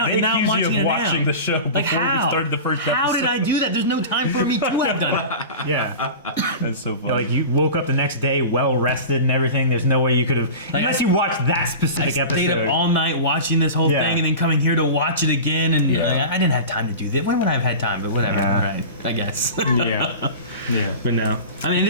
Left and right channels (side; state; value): both; inverted; correlation -0.32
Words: They And now I'm accuse you watching of it watching now. the show before Like how? we started the first episode. How did I do that? There's no time for me to have done it. Yeah. That's so funny. Like you woke up the next day well rested and everything. There's no way you could have, Like, unless you watched that I specific stayed episode. up all night watching this whole Yeah. thing, and then coming here to watch it again. And Yeah. like, I didn't have time to do that. When would I have had time? But whatever. Yeah. All right, I guess. Yeah. Yeah. but no. I mean,